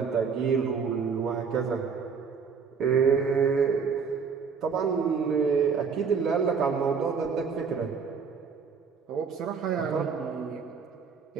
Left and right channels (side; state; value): left; quieter; 5.8 dB